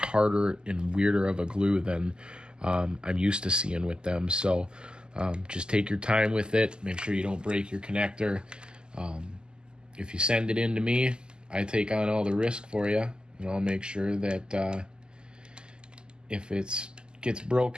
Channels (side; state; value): left; late; 0.047 ms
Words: and weirder of a glue than I'm used to seeing with them. So just take your time with it. Make sure you don't break your connector. If you send it in to me, I take on all the risk for you, and I'll make sure that if it gets